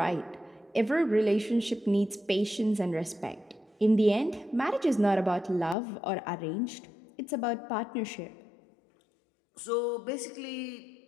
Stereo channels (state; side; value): drops out; right; at 5.8 s